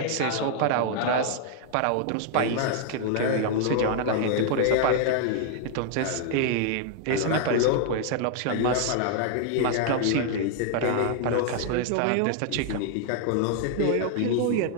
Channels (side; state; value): both; different; correlation 0.00